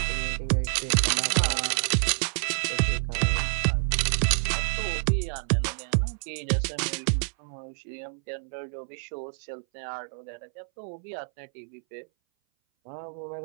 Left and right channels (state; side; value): silent; left; 58 dB below the other